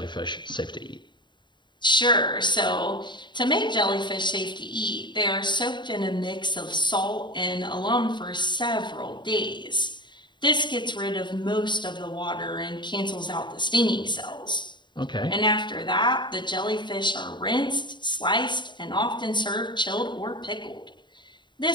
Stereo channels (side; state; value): right; late; 0.22 ms